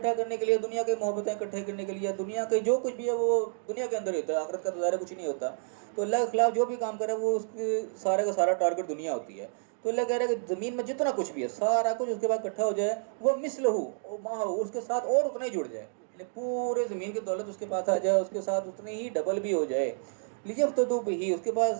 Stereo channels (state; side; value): silent; left; digital silence